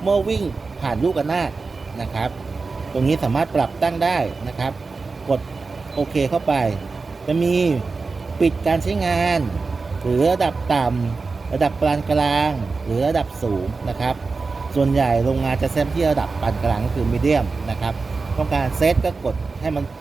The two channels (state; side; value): quieter; left; 4.2 dB